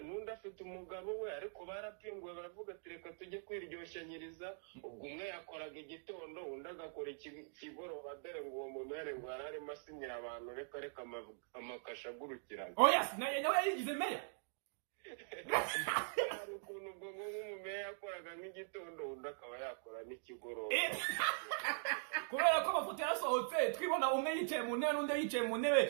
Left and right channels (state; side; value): silent; left; digital silence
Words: n'undi afite umugabo we ariko barapinguwe baravuga ati reka tujye kwiryoshanyiriza ubwo umwe yakoraga igitondo undi agakora ikigoroba dore ngo uwo mumere ngo yari arimo asinyira abantu reka amakasha agurukirana nawe yayigize meya hari ukuntu ubwo nk'umumeya yakoraga nk'igitondo undi akaba yakora n'ikigoroba kubera ko amafoto yarasohotse twibona umwe yicaye mu ntebe n'undi yicaye mu ntebe